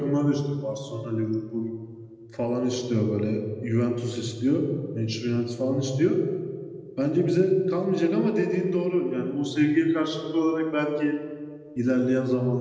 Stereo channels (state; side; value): identical; both; correlation 1.00